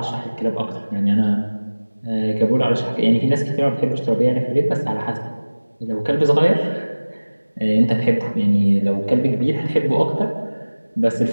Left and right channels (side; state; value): both; inverted; correlation -1.00